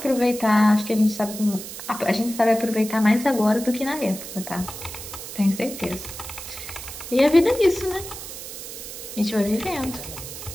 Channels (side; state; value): right; noise; hiss, 10 dB below the sound